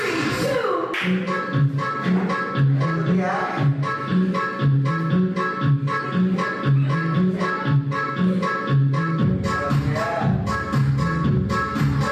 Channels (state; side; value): identical; both; correlation 1.00